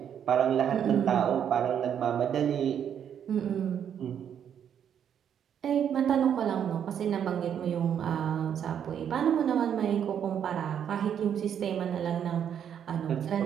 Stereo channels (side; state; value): left; quieter; 8.8 dB